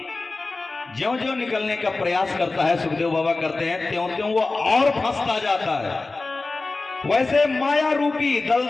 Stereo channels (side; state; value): right; quieter; 3.5 dB